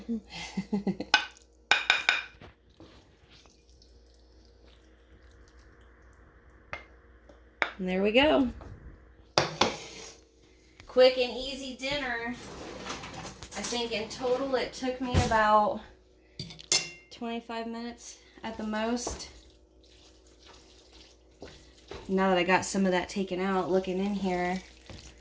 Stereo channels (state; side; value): identical; both; correlation 1.00